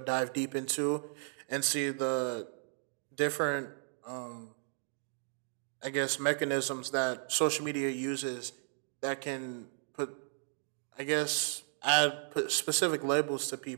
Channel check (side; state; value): left; silent; digital silence